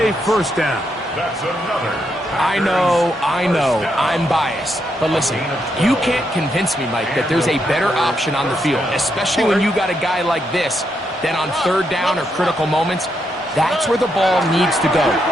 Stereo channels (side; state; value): both; normal; correlation 0.80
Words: first down. That's another. I know, I'm biased. But listen, you can't convince me, Mike, that there's a better option on the field, especially when you got a guy like this, then on third down or critical moments. That's where the ball needs to go.